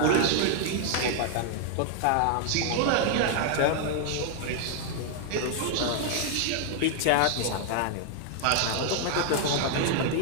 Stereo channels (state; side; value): different; both; correlation 0.00